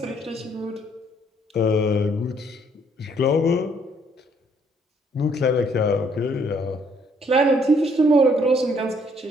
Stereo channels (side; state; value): both; normal; correlation 0.66